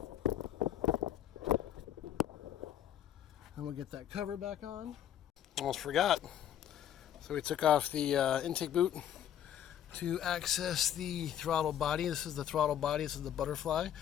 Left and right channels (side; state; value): right; quieter; 10.4 dB